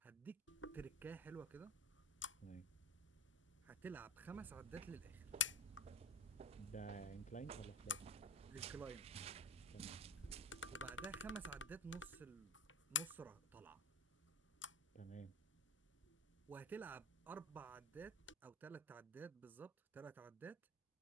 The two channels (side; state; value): both; normal; correlation 0.27